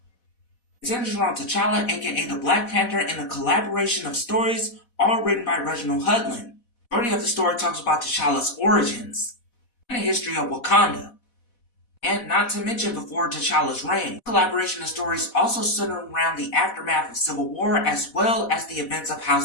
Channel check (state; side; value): late; right; 4.1 ms